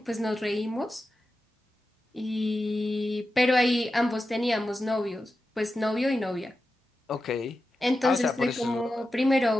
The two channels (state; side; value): normal; both; correlation 0.91